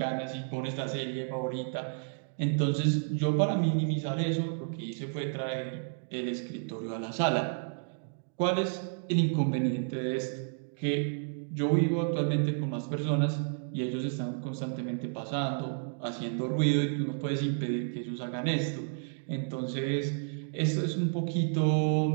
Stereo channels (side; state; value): left; silent; digital silence